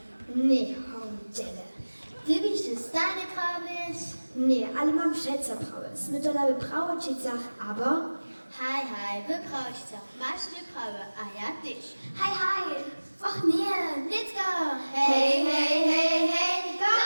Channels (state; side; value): inverted; both; correlation -1.00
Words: Nie, hołdziele. Ty byś się stanie prawić? Nie, ale mam przeco prawić. My to laby prawo czycach, aber... Hej, wyprawić się. Masz nie prawo, a ja też. Hej. Och nie, Let's go! Hej,